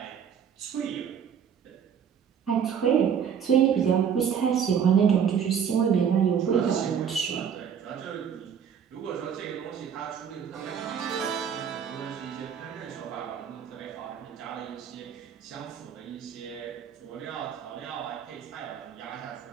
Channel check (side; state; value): left; quieter; 7.8 dB